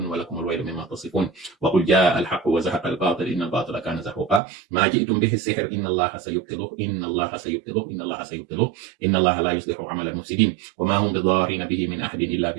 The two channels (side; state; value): left; drops out; at 4.4 s